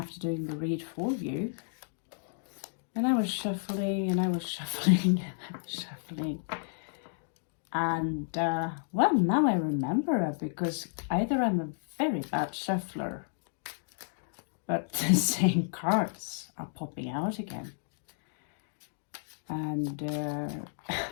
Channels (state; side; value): silent; right; digital silence